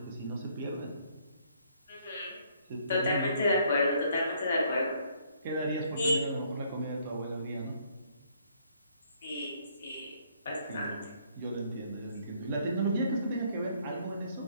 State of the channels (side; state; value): both; inverted; correlation -0.66